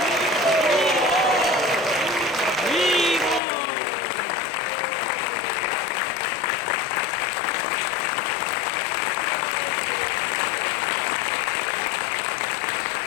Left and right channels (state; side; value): drops out; right; at 3.4 s